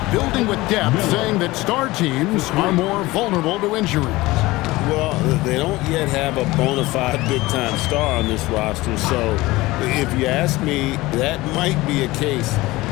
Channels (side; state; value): right; quieter; 19.7 dB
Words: building with depth, saying that star teams are more vulnerable to injuries. Well, they don't yet have a bona fide big-time star on this roster, so if you ask me, that might be a case